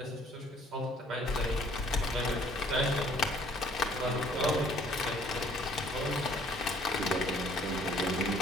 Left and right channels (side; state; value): both; normal; correlation 0.60